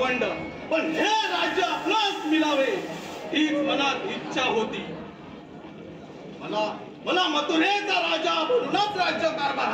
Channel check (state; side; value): identical; both; correlation 1.00